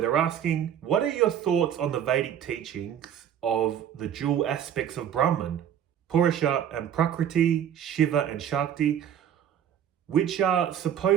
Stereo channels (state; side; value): quieter; left; 9.6 dB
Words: asking, what are your thoughts on the Vedic teachings of the dual aspects of Brahman, Purusha and Prakriti, Shiva and Shakti, which are